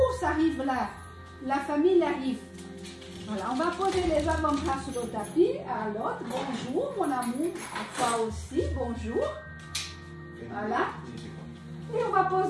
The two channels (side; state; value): both; identical; correlation 1.00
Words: ça arrive là. La famille arrive. Voilà, on va poser les avant-bras sur le tapis. À l'autre, bonjour mon amour. À toi aussi, bonjour. Voilà. Et on va